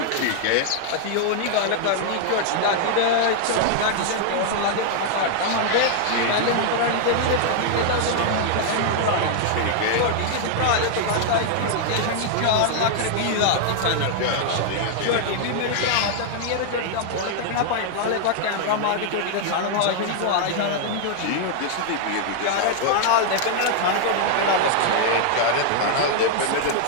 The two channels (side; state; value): both; different; correlation 0.00